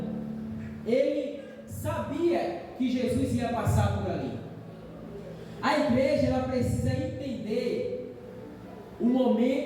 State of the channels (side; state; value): both; identical; correlation 1.00